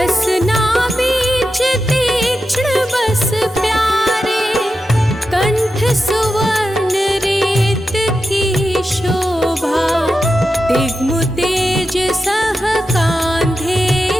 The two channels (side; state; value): both; normal; correlation 0.90